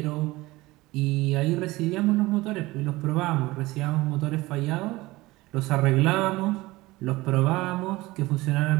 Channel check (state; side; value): quieter; left; 19.9 dB